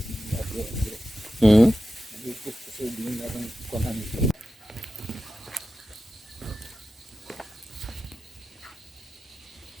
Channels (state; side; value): normal; both; correlation 0.93